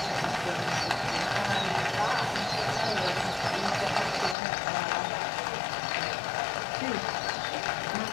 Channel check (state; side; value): drops out; right; at 4.4 s